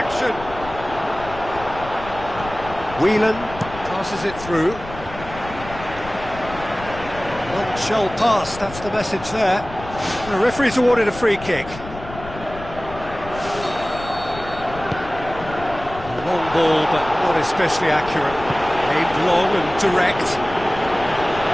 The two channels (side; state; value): left; noise; rumble, 14 dB below the sound